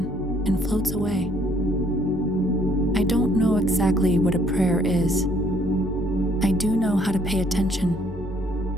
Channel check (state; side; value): normal; both; correlation 0.64